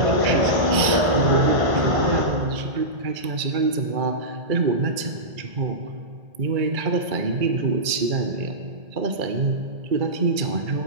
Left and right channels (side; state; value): left; late; 2.3 ms